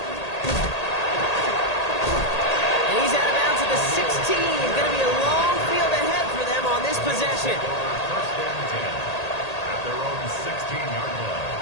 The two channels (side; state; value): right; late; 1.8 ms